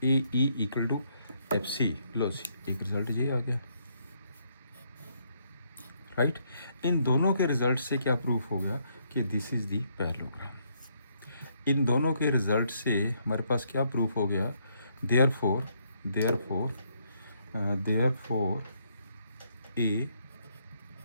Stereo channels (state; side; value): inverted; both; correlation -0.73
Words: A E equal to F C, लो सी, एक रिजल्ट ये आ गया, राइट। इन दोनों के रिजल्ट से क्या प्रूफ हो गया कि दिस इज़ दी पैरेललोग्राम। इन दोनों के रिजल्ट से हमारे पास क्या प्रूफ हो गया, therefore A